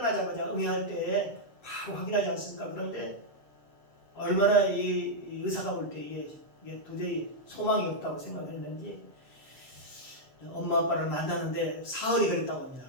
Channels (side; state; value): right; late; 7.4 ms